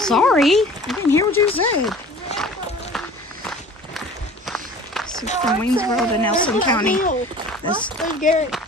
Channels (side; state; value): both; normal; correlation 0.44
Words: I didn't hear what you said. So from Waynesboro to Nelson County, this